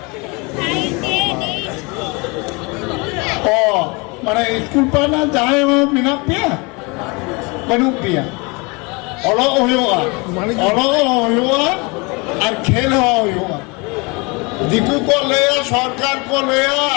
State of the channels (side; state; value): right; quieter; 28.3 dB